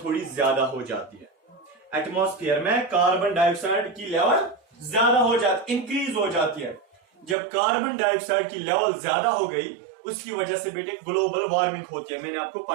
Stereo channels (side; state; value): left; drops out; at 7.4 s